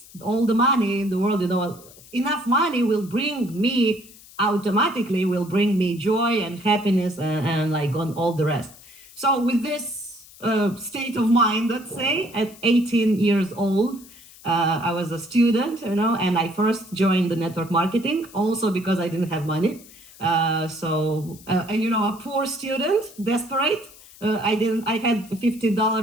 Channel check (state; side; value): noise; left; hiss, 21 dB below the sound